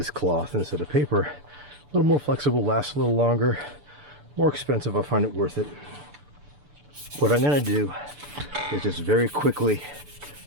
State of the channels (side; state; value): left; late; 6.8 ms